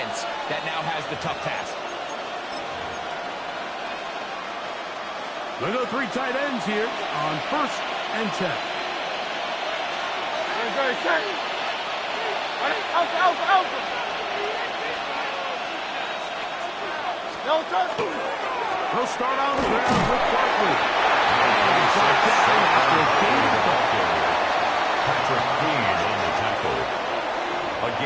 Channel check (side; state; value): both; identical; correlation 1.00